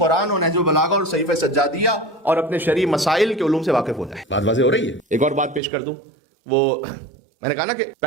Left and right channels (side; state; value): left; drops out; at 5.6 s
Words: اور نہج البلاغہ اور صحیفہ سجادیہ اور اپنے شرعی مسائل کے علوم سے واقف ہو جائے. بات واضح ہو رہی ہے. ایک اور بات پیش کر دوں، وہ میں نے کہا نا کہ